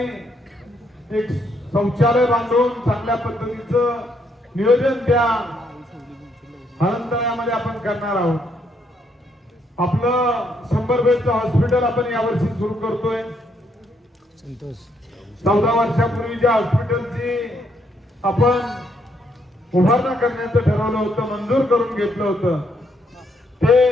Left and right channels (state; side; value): normal; both; correlation 0.73